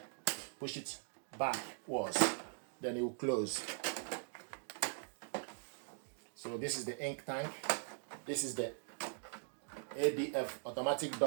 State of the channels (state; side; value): silent; left; digital silence